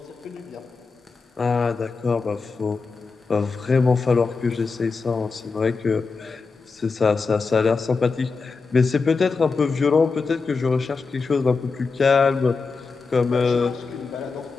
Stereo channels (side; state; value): right; quieter; 4.5 dB